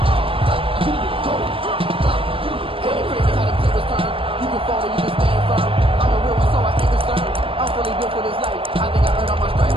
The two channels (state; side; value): late; left; 0.26 ms